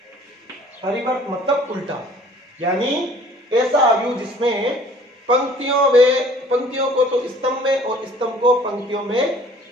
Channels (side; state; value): both; normal; correlation 0.53